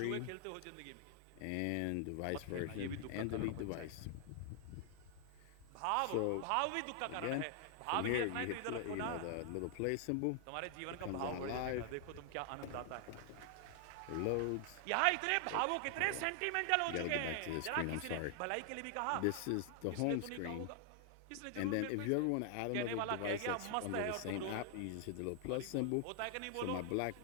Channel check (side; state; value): both; different; correlation 0.00